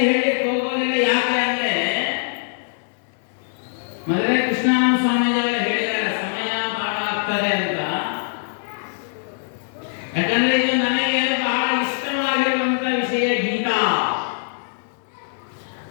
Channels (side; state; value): right; silent; 64 dB below the other